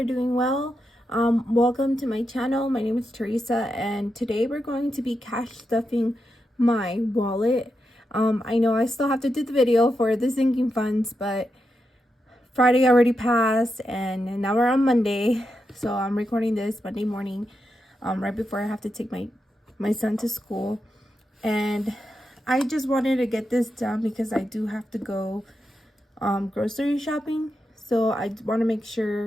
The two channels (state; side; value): normal; both; correlation 0.86